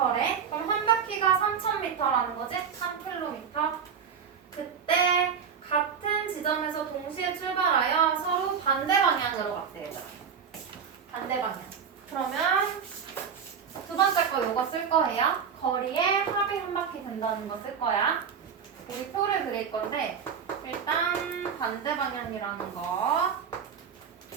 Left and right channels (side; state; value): left; quieter; 7.0 dB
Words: 그럼 한 바퀴가 3000m라는 거지? 3km. 그때 같은 지점에서 동시에 출발하여 서로 반대 방향으로 갔대, 얘들아. 반대 방향. 그러면 두 번째 거 이거 쓸 거예요. 거리에 합이 한 바퀴 된다는 거 쓸 거야. 우리 표를 그릴 건데 일단 반대 방향이라는 거.